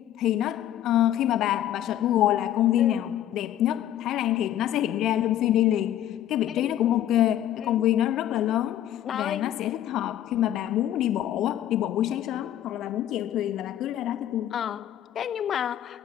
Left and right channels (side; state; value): right; quieter; 11.8 dB